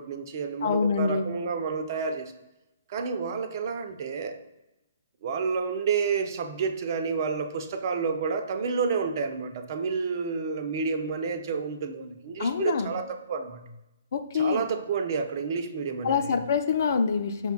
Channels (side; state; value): both; inverted; correlation -0.58